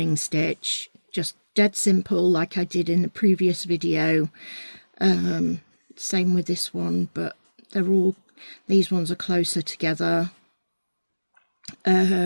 stitch, just dead simple, like I did in the previous video. Same with this one, but they're all, these ones are closer together.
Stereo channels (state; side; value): inverted; both; correlation -1.00